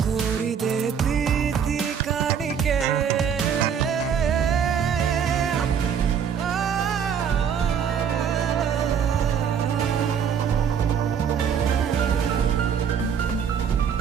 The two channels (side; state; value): left; quieter; 7.6 dB